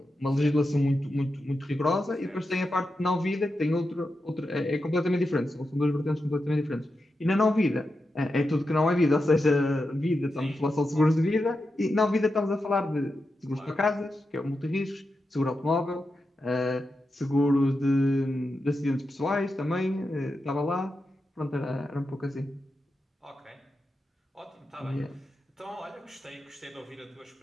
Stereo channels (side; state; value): both; normal; correlation 0.89